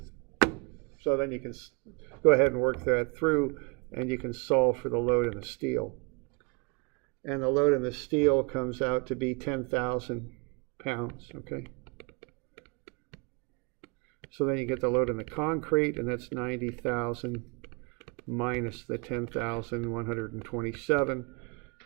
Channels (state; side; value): quieter; left; 32.5 dB